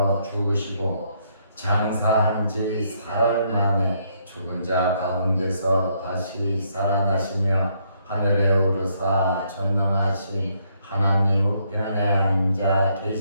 죽으시고 장사한 지 사흘 만에 죽은 자 가운데서 다시 살아나시며 하늘에 오르사 전능하신 하나님 우편에 앉아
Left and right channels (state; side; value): inverted; both; correlation -0.72